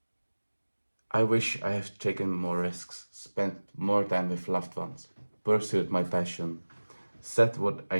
I wish I had taken more risks, spent more time with loved ones, pursued my passion, said what I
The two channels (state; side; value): inverted; both; correlation -1.00